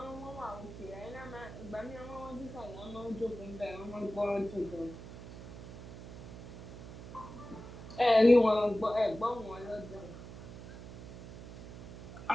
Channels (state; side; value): noise; right; hum, 12 dB below the sound